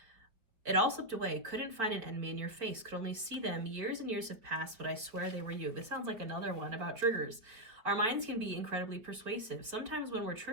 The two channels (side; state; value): left; late; 4.7 ms